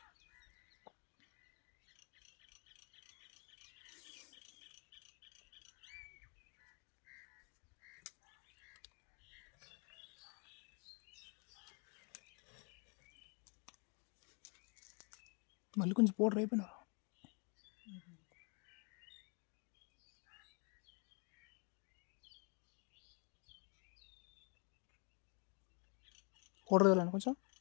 మళ్ళీ కొంచెం పౌడర్ అయిపోయినా పౌడర్ వెళ్ళాను కొంచెం.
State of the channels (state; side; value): quieter; right; 35.4 dB